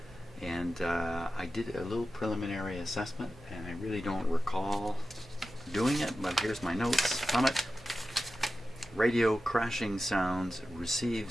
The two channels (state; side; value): normal; both; correlation 0.93